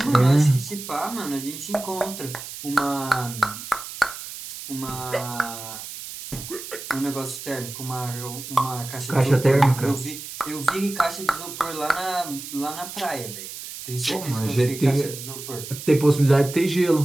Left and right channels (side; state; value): right; noise; hiss, 11 dB below the sound